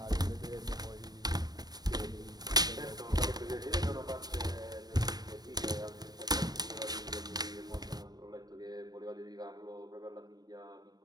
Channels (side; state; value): left; late; 0.19 ms